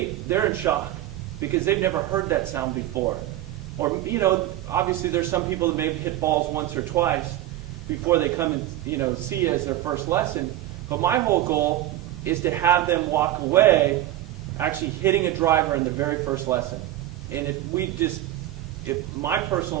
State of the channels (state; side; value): quieter; left; 14.0 dB